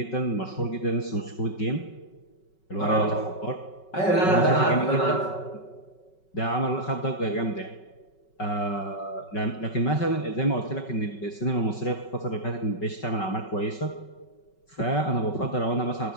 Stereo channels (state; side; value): late; right; 5.3 ms